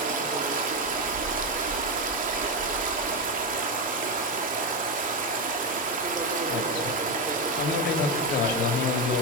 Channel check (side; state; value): both; normal; correlation 0.11